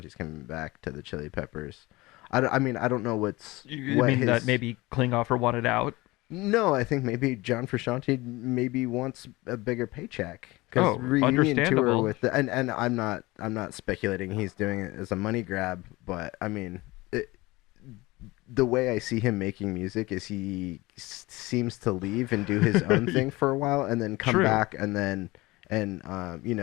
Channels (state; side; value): quieter; right; 21.2 dB